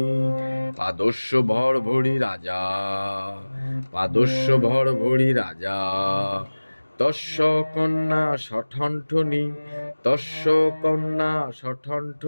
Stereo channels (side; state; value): both; inverted; correlation -1.00